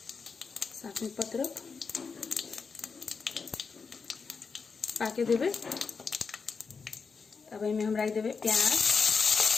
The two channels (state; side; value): quieter; right; 5.2 dB